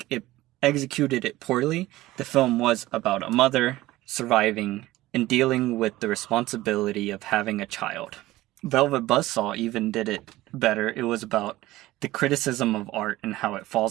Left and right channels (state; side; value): quieter; left; 17.3 dB